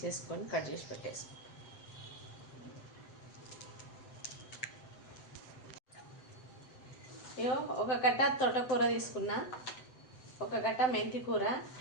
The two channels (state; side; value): late; right; 7.9 ms